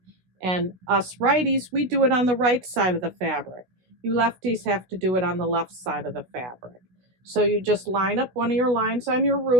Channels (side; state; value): left; late; 16 ms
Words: And us righties, we do it on the right side of the fabric. You lefties have to do it on the left side of the fabric. So you just line up one of your lines on your